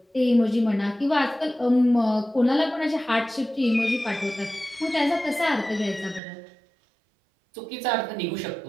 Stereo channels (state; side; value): drops out; left; at 6.2 s